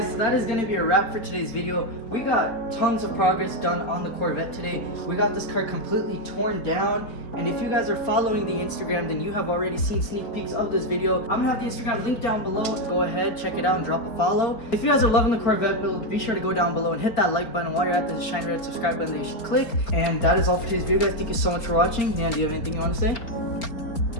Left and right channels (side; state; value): right; late; 4.4 ms